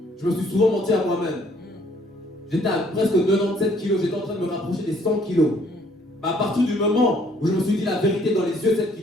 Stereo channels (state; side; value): normal; both; correlation 0.63